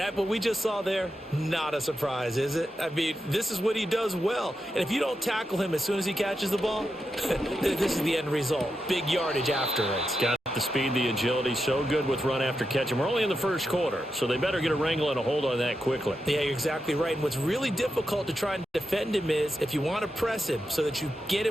what we just saw there, not a surprise, is it? I mean, this is what he does well. And if you don't tackle him as soon as he catches the ball, this is the end result. Big yardage afterwards. Got the speed, the agility, so good with run after catch. And we're only in the first quarter, so they better get a wrangle and a hold on that quickly. Yeah, you're exactly right. And what's really difficult to try and defend him is if you want to press him so that you get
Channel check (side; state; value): both; normal; correlation 0.87